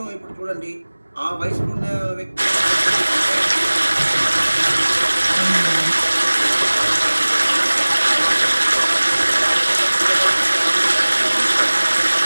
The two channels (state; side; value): inverted; both; correlation -1.00